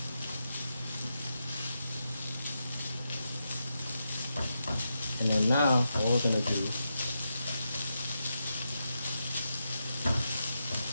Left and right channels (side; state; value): both; inverted; correlation -0.86